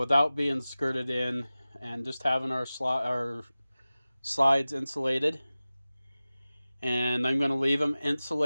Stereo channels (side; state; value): both; inverted; correlation -0.97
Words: being skirted in and just having our slides insulated, and I'm going to leave them